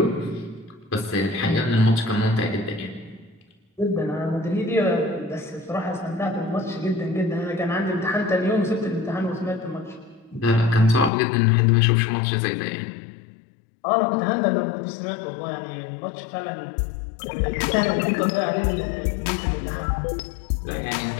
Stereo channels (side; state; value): right; drops out; at 11.1 s